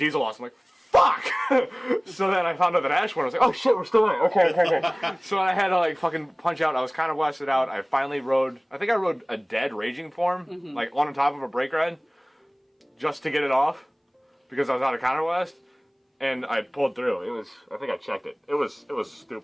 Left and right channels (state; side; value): identical; both; correlation 1.00